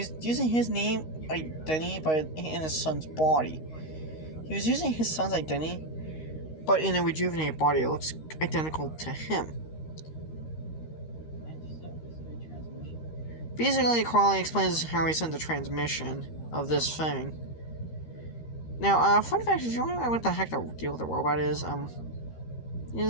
using his name identity but in his son's body. He was using his son's identity, but in a rejuvenated body it looks identical to him. Basically, Carl explains how he sent the transmission of this thing. Now, fun fact, if you wonder what the heck the deal with the robot is, this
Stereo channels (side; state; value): right; late; 13 ms